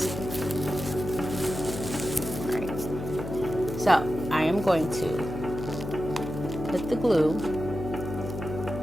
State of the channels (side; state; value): left; noise; hum, 7 dB below the sound